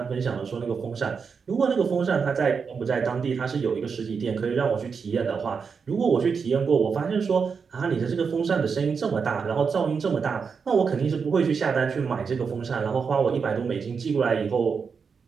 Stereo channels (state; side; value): quieter; left; 5.7 dB